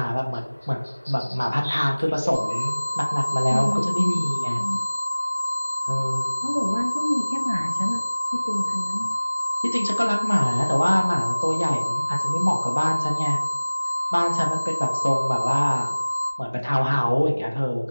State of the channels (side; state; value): both; inverted; correlation -1.00